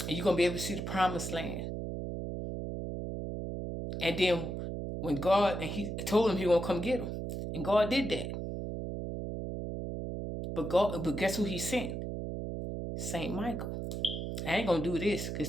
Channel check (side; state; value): right; noise; hum, 4 dB below the sound